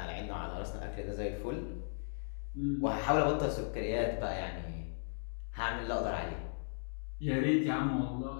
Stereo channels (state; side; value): silent; right; digital silence